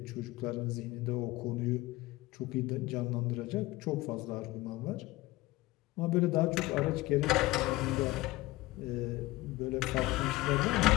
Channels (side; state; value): right; quieter; 19.0 dB